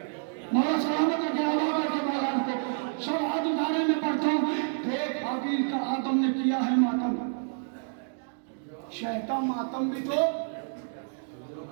मातम भी तो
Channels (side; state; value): left; silent; digital silence